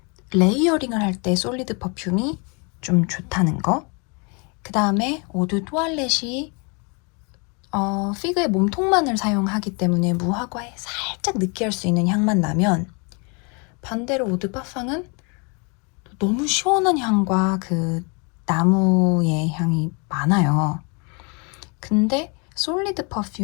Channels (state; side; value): quieter; right; 33.3 dB